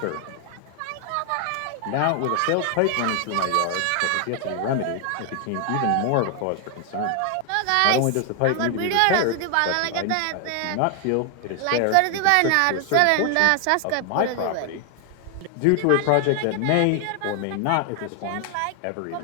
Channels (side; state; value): both; different; correlation 0.00